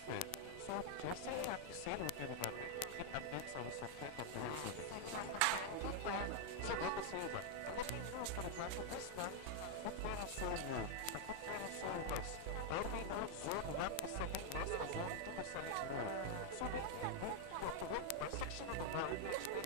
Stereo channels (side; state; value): both; different; correlation 0.00